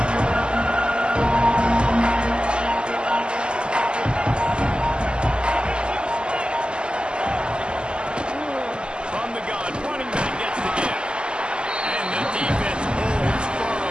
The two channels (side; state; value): left; late; 0.049 ms